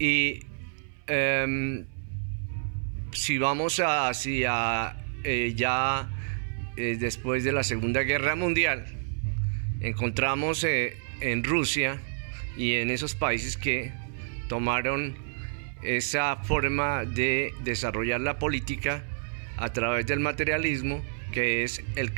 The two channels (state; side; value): silent; left; 59 dB below the other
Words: si vamos hacia después de la Segunda Guerra Mundial, encontramos en Rusia y en esos países que tomaron esa forma de desarrollar la política a través del materialismo, que es el